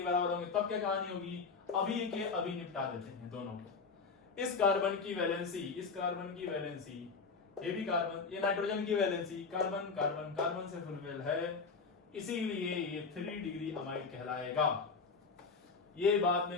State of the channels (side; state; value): right; quieter; 4.8 dB